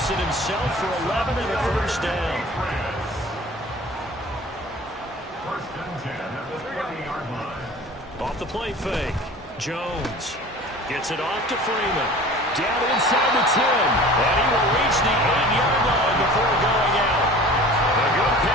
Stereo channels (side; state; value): both; normal; correlation 0.42